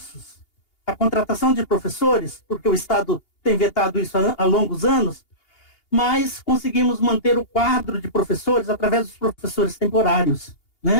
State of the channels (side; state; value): right; late; 2.8 ms